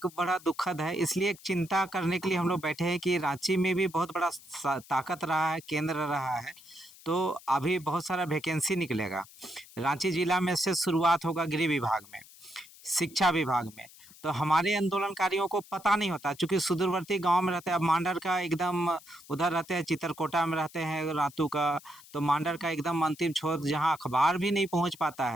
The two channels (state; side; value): noise; left; hiss, 21 dB below the sound